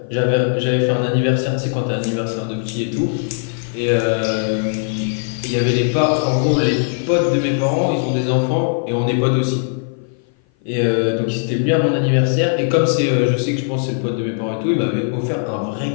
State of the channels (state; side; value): silent; right; 56 dB below the other